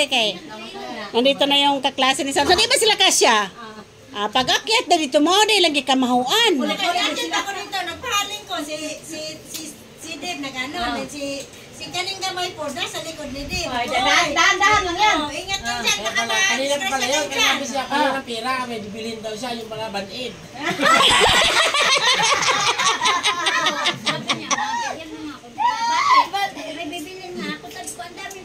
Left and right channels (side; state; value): both; identical; correlation 1.00